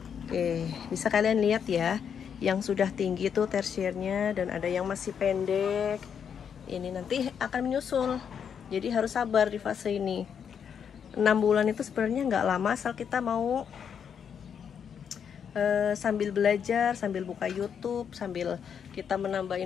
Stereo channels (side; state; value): right; quieter; 7.6 dB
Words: Oke, bisa kalian lihat ya, yang sudah tinggi itu tersiernya, dan ada yang masih pendek. Ini nanti akan menyusul, jadi harus sabar di fase ini. 6 bulan itu sebenarnya nggak lama, asal kita mau sambil belajar, sambil buka YouTube, sambil kita menambah